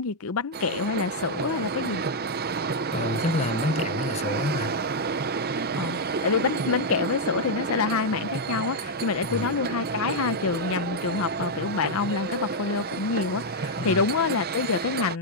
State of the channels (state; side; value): normal; both; correlation -0.02